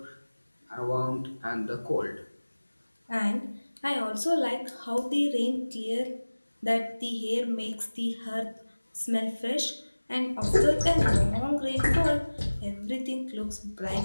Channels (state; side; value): inverted; both; correlation -1.00